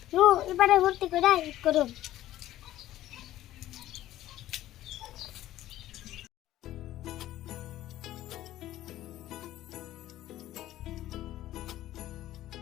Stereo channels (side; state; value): right; quieter; 14.2 dB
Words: এবারে ভর্তি করে করুন।